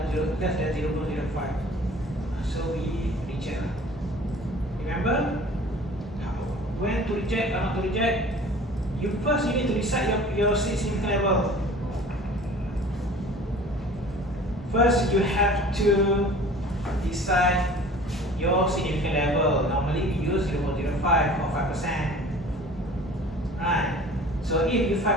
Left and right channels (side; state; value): both; normal; correlation 0.45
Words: Less than 0.05. So we reject. Remember when to reject or not to reject? You need to decide your significant level. First, you have to decide your significant level. Normally we use 0.05 or 5%. Right. So if you